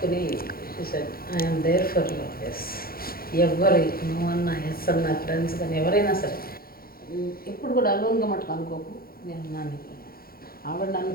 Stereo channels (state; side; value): late; right; 0.43 ms